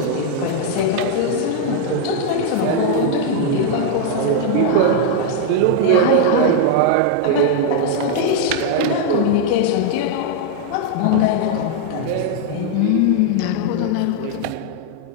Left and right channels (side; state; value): both; different; correlation 0.00